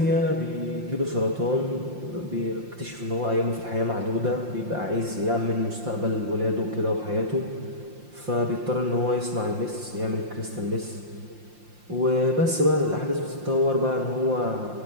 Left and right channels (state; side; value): late; left; 5.7 ms